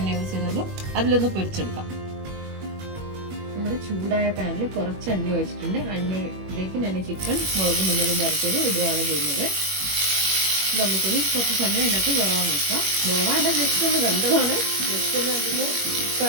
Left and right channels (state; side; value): late; left; 21 ms